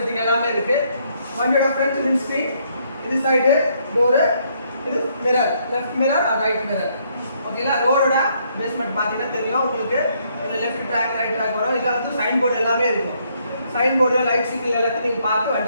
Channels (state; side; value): inverted; both; correlation -0.70